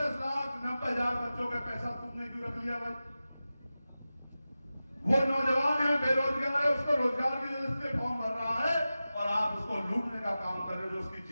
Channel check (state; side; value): inverted; both; correlation -0.94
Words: बच्चों का पैसा तुमने क्यों रख लिया भाई? वो नौजवान है, बेरोजगार है, उसको रोजगार की वजह से फॉर्म भर रहा है और आप उसको लूटने का काम कर रहे हो, जो उसकी